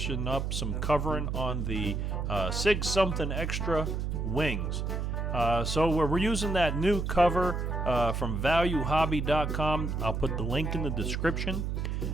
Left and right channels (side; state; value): right; noise; hum, 1 dB below the sound